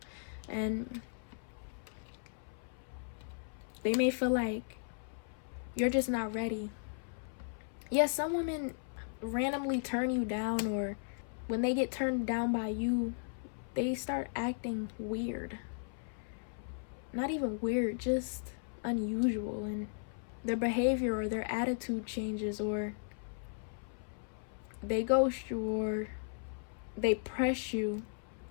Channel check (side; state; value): right; silent; 54 dB below the other